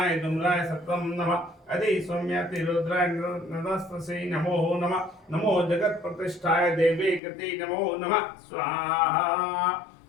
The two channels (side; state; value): right; drops out; at 7.2 s